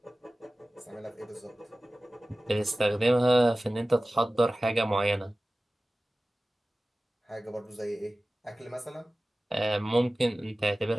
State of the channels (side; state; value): both; normal; correlation 0.96